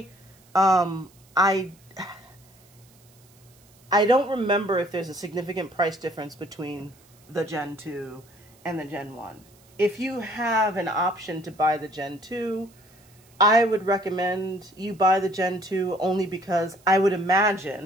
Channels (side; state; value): right; noise; hiss, 29 dB below the sound